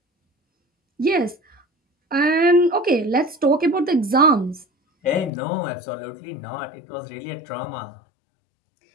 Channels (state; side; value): drops out; right; at 5.3 s